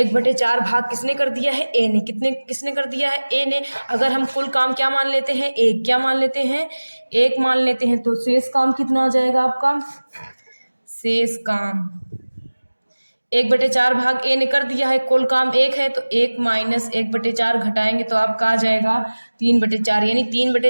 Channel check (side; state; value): both; inverted; correlation -1.00